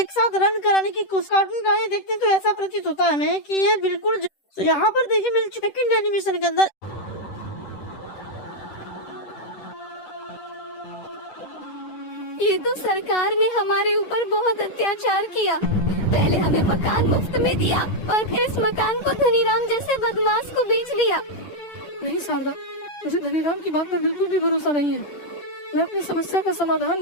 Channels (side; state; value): right; late; 10 ms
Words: साथ रन कराने की कोशिश। कार्टून गाने देखते हैं तो ऐसा प्रतीत होता है हमें कि ये बिल्कुल तो यहाँ पर देखिए मिल चुका सेकंड एनिमेशन के अंदर। ये तो सरकार ने हमारे ऊपर बहुत अत्याचार किया। पहले हमें मकान मुफ्त में दिया और फिर इस मकान को धनीराम जैसे बदमाश को बेच दिया। नहीं शारदा, मुझे धनीराम की बात पर बिल्कुल भी भरोसा नहीं है। मैं अपनी समस्या का समाधान